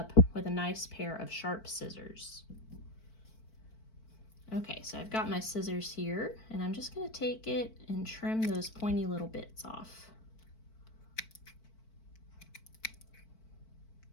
with a nice pair of sharp scissors. Okay, so I've got my scissors here, and I'm just going to take it and trim those pointy little bits off.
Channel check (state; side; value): late; right; 4.5 ms